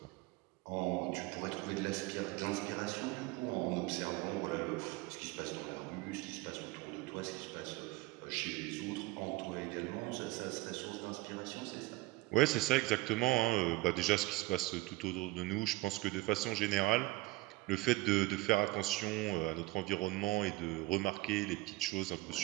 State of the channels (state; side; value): quieter; left; 20.4 dB